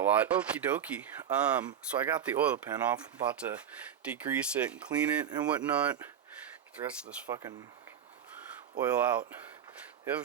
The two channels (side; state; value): left; quieter; 9.0 dB